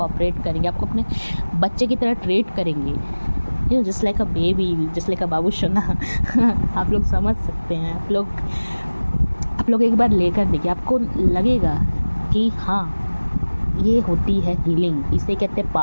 करेंगे, आपको अपने बच्चे की तरह ट्रीट करेंगे, you just like a baby, just like a बाबू सोना। आप लोग समझ सकते हैं। आप लोग एक बार लेकर देखिए, आपको लगेगा कि हाँ, ये होती है हीलिंग, इसे कहते हैं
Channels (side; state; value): both; inverted; correlation -1.00